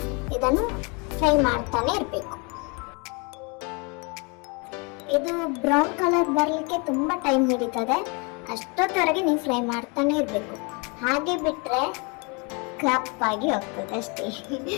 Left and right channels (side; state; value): right; quieter; 31.7 dB